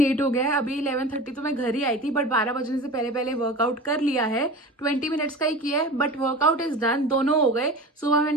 हो गया है, अभी 11:30 तो मैं घर ही आई थी, बट 12 बजने से पहले पहले वर्कआउट कर लिया है। 20 मिनट्स का ही किया है, बट वर्कआउट इज डन। दोनों हो गए। सुबह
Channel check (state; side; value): normal; both; correlation 0.34